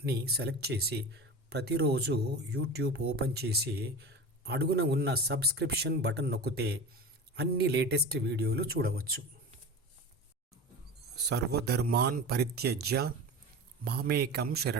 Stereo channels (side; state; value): both; normal; correlation 0.30